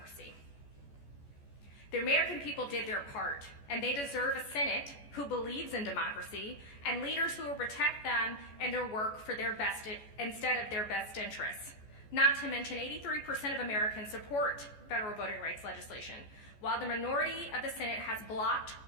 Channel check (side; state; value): right; late; 14 ms